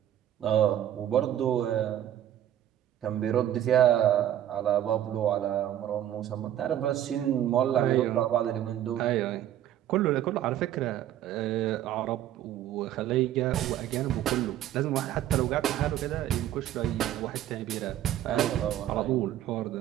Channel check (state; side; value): quieter; left; 11.7 dB